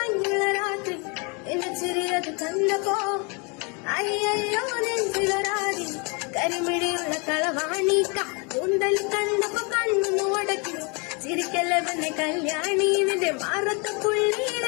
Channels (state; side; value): quieter; right; 32.1 dB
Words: രാത്രി എന്നെ ചെറിയത് കണ്ടപ്പോ അയ്യോ നെഞ്ചിലൊരാടി കരിമിടിയുള്ള കളവാണിക്ക കൂന്തൽ കണ്ടപ്പോ കണ്ണു ഉടക്കി ചിരിക്കല്ലവന്റെ കല്യാണി നിന്റെ മാറത്തെ